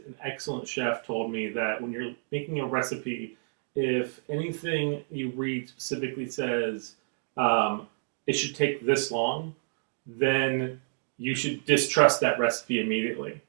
excellent chef told me that when you're making a recipe, if anything you read specifically says it should take this long, then you should distrust that recipe immediately.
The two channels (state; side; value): silent; left; digital silence